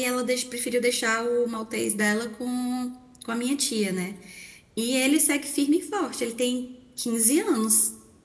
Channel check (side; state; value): both; identical; correlation 1.00